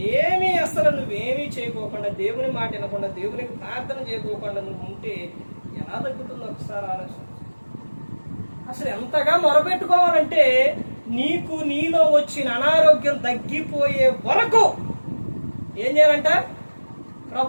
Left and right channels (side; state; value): both; inverted; correlation -1.00